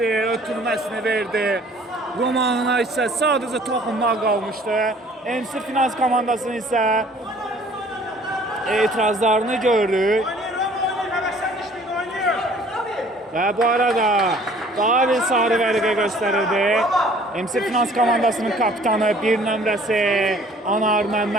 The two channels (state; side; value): normal; both; correlation 0.54